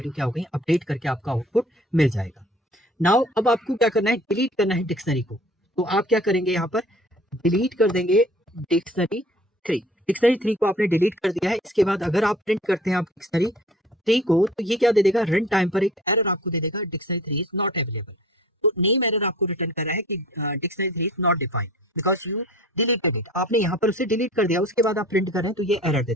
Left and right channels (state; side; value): normal; both; correlation 0.48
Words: क्या हो गई, अपडेट करके आपका आउटपुट मिल जाएगा। नाउ अब आपको क्या करना है, डिलीट करना है डिक्शनरी को। तो आप क्या करेंगे, यहाँ पर डिलीट कर देंगे डिक्शनरी 3 को आपने डिलीट कर दिया है। इसके बाद अगर आप प्रिंट करते हैं आप डिक्शनरी 3 को, तो ये क्या दे देगा, रन टाइम पर एक एरर आपको दे देगा, डिक्शनरी 3 इज नॉट अवेलेबल। तो नेम एरर आपको रिटर्न कर रहा है कि dictionary 3 is not defined because you deleted it, आपने यहाँ पर उसे डिलीट कर दिया। उसके बाद आप प्रिंट कर रहे हैं तो ये एरर दे